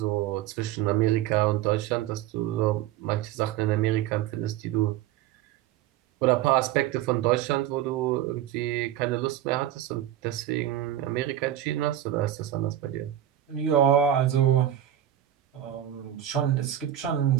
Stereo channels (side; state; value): left; quieter; 11.9 dB